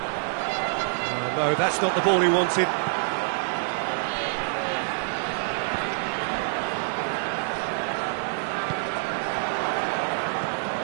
No, that's not the ball he wanted.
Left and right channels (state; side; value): silent; left; digital silence